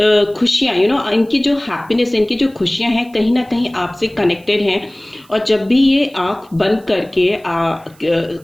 खुशियाँ, यू नो, इनकी जो हैप्पीनेस, इनकी जो खुशियाँ हैं कहीं ना कहीं आपसे कनेक्टेड हैं। और जब भी ये आँख बंद करके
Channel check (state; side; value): noise; right; hiss, 29 dB below the sound